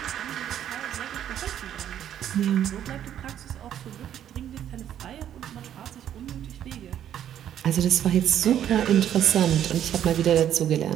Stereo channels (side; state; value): left; quieter; 10.5 dB